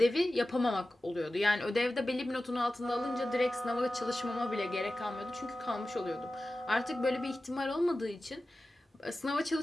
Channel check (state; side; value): normal; both; correlation 0.95